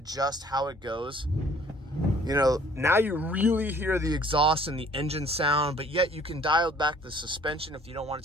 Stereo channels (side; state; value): both; normal; correlation 0.56